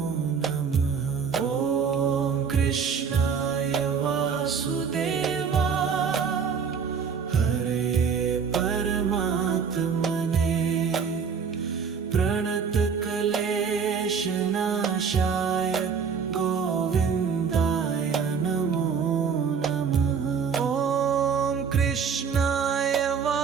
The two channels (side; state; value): left; quieter; 6.3 dB